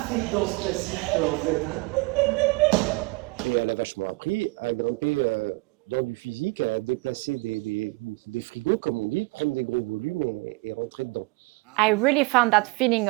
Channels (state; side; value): quieter; left; 25.6 dB